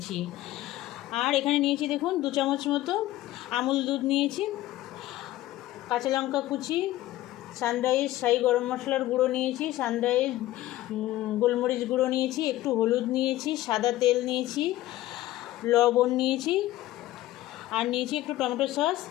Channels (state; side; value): quieter; right; 15.8 dB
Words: আর এখানে নিয়েছি দেখুন 2 চামচ মতো আমুল দুধ নিয়েছি, কাঁচা লঙ্কা কুচি, সানরাইজ শাহি গরম মশলার গুঁড়ো নিয়েছি, সানরাইজ গোলমরিচ গুঁড়ো নিয়েছি, একটু হলুদ নিয়েছি, সাদা তেল নিয়েছি, লবণ নিয়েছি, আর নিয়েছি একটু টমেটো সস,